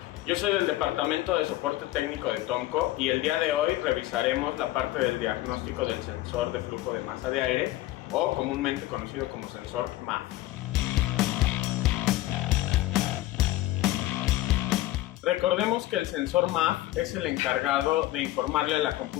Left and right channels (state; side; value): quieter; right; 16.3 dB